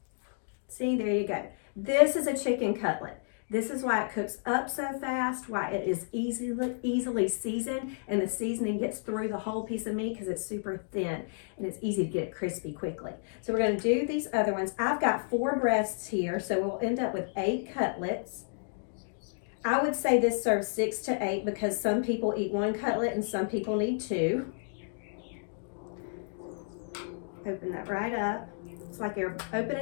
See, there you go. This is a chicken cutlet. This is why it cooks up so fast, why it is easily seasoned, and the seasoning gets through the whole piece of meat because it's super thin, and it's easy to get it crispy quickly. So we're going to do these other ones. I've got 4 breasts here, so we'll end up with 8 cutlets. I would say this serves 6 to 8 because some people eat 1 cutlet and some people need 2. Open that right up. It's like you're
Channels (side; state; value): right; silent; digital silence